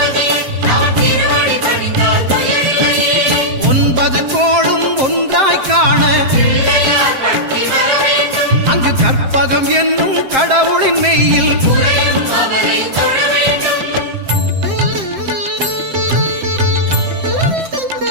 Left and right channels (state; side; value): late; left; 7.6 ms